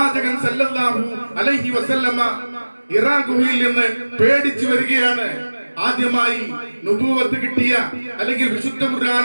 സല്ലല്ലാഹു അലൈഹി വസല്ലമ ഇറാ ഗുഹയിൽ നിന്ന് പേടിച്ചു വരികയാണ്. ആദ്യമായി നുബുവത്ത് കിട്ടിയ അല്ലെങ്കിൽ വിശുദ്ധ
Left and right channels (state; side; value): inverted; both; correlation -1.00